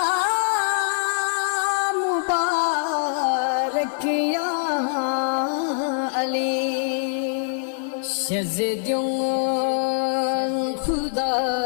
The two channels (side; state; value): right; silent; digital silence